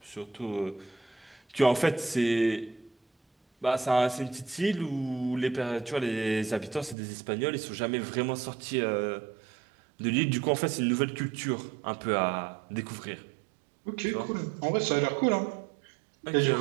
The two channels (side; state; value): left; drops out; at 7.0 s